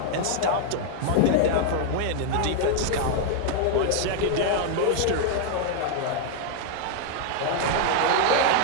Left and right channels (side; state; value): both; different; correlation 0.00